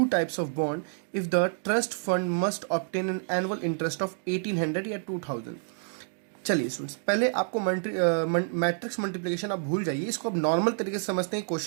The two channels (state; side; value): silent; left; 59 dB below the other